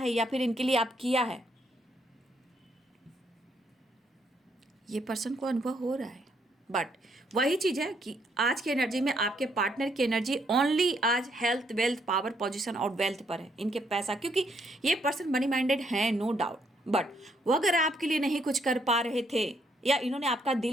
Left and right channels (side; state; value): both; normal; correlation 0.72